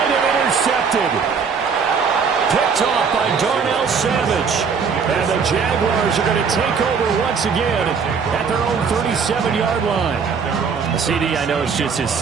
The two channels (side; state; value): left; quieter; 5.9 dB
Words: and intercepted. Picked off by Darnell Savage. And the Jaguars Chargers are going to take over once again at their own 37-yard line. CD, I know it's just his